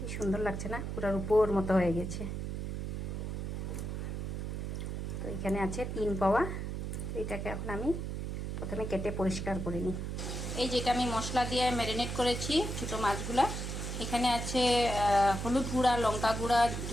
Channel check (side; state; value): right; noise; hum, 4 dB below the sound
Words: সুন্দর লাগছে না? পুরার উপর মতো হয়ে গেছে। তো এখানে আছে 3 পাওয়া। তো এটাকে এখন আমি প্রথমে কেটে পরিষ্কার করে নিই। এই যেটা আমি মশলা দিয়ে ম্যারিনেট করেছি ছোটো মাছগুলা, এখানে আছে হলুদ গুঁড়া, লঙ্কা গুঁড়া,